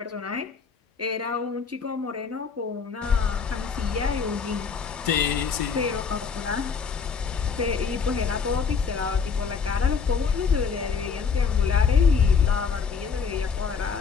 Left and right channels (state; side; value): quieter; right; 5.7 dB